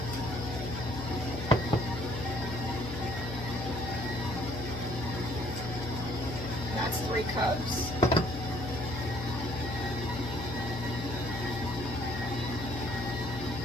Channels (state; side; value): noise; left; hum, 6 dB below the sound